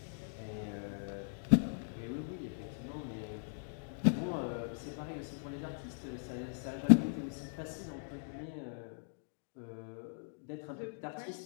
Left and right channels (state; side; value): silent; right; digital silence